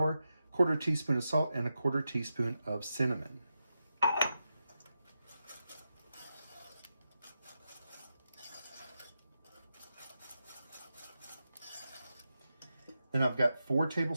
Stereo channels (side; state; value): both; inverted; correlation -0.89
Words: 1/4 teaspoon of salt, and 1/4 teaspoon of cinnamon. Then I've got 4